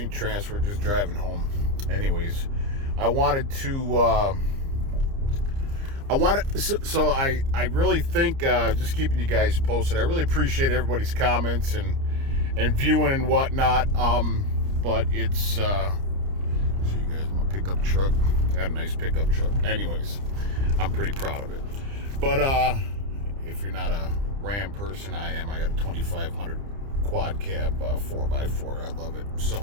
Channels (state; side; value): late; left; 30 ms